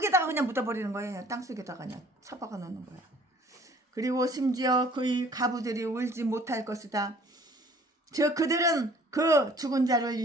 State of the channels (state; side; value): normal; both; correlation 0.54